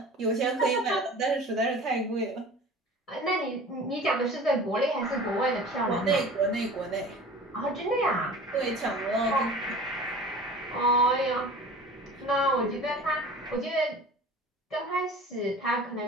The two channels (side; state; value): both; normal; correlation 0.41